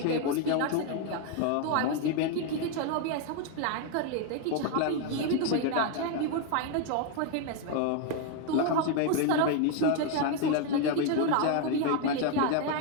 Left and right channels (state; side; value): different; both; correlation 0.01